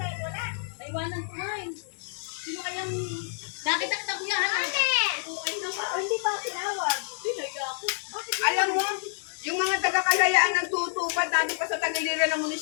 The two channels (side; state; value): right; silent; digital silence